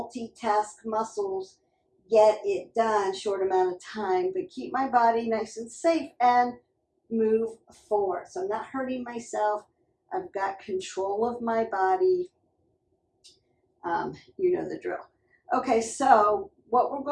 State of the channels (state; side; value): identical; both; correlation 1.00